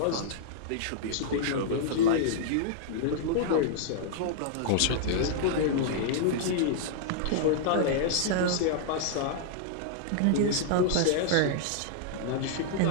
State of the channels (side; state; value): both; different; correlation -0.01